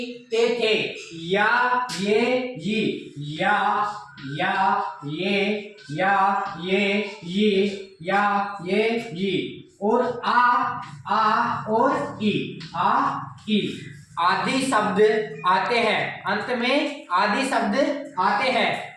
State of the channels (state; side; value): identical; both; correlation 1.00